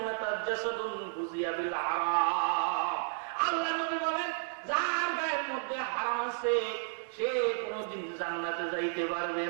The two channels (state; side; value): silent; left; 56 dB below the other